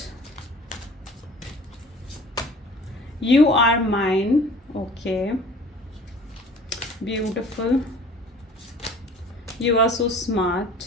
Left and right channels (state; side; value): normal; both; correlation 0.47